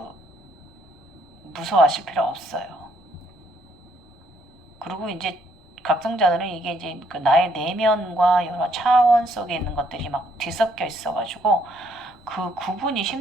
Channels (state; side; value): normal; both; correlation 0.68